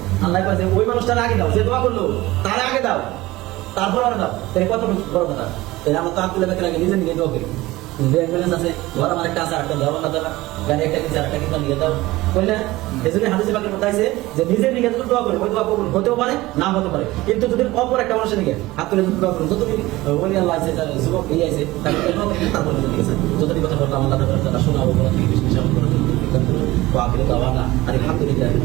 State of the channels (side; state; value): left; quieter; 18.8 dB